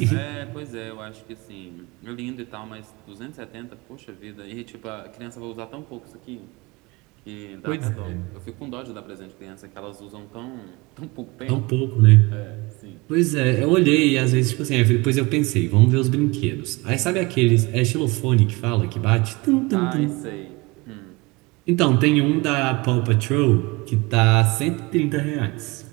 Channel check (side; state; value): left; quieter; 24.6 dB